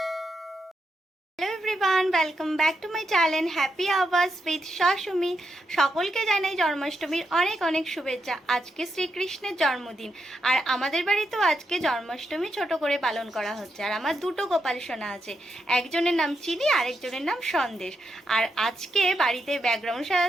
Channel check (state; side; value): normal; both; correlation 0.83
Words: welcome back to my channel happy hours with Shashumi. সকলকে জানাই জন্মাষ্টমীর অনেক অনেক শুভেচ্ছা। আজকে শ্রীকৃষ্ণের জন্মদিন আর আমাদের বাড়িতেও আজকে জন্মাষ্টমী ছোট করে পালন করা হচ্ছে। আর আমার দুটো গোপাল সোনা আছে, একজনের নাম চিনি আর একজনের নাম সন্দেশ। আর আজকে বাড়িতে ব্যাকগ্রাউন্ড